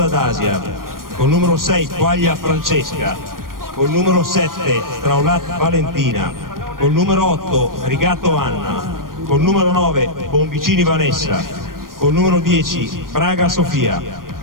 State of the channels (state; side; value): late; left; 0.91 ms